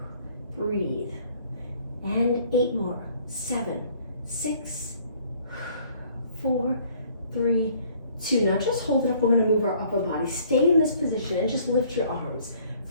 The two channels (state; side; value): inverted; both; correlation -0.59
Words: Breathe. And 8 more. 7, 6, 4, 3, 2. Now just hold it up. We're going to move our upper body. Stay in this position and just lift your arms.